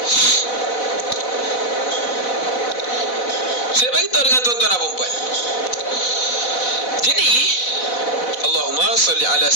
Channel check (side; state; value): right; late; 4.0 ms